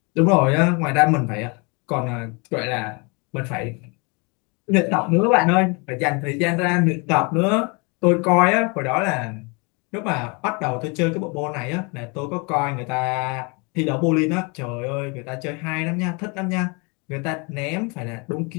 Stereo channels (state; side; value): quieter; right; 31.0 dB